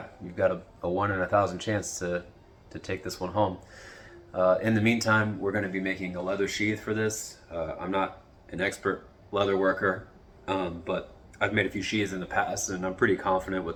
you've got a 1 in 1,000 chance to take this one home. In the meantime, we're going to be making a leather sheath for this. I'm not an expert leather worker, but I've made a few sheaths in the past and I'm pretty confident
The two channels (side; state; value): both; identical; correlation 1.00